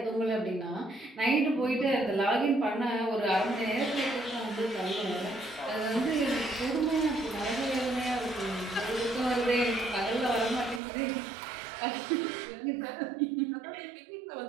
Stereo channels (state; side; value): drops out; left; at 10.8 s